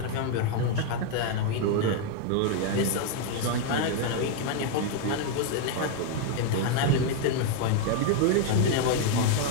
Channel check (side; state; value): both; different; correlation 0.00